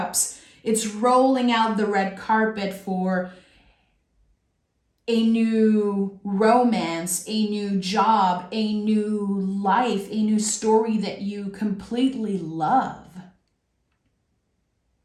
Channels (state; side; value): identical; both; correlation 1.00